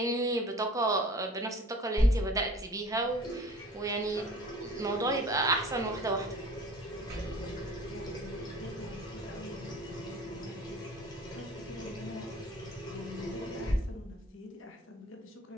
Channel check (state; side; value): normal; both; correlation 0.45